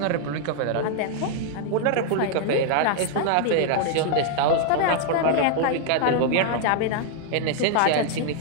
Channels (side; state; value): both; different; correlation 0.00